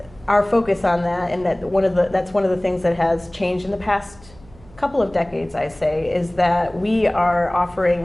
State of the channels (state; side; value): noise; right; hum, 24 dB below the sound